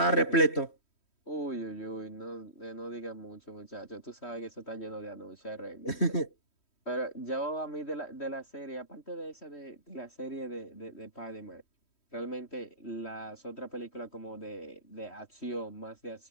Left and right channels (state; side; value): late; right; 3.1 ms